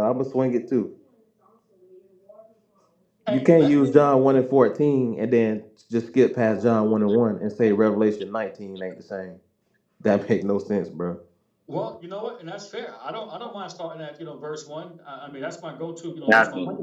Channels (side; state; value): both; identical; correlation 1.00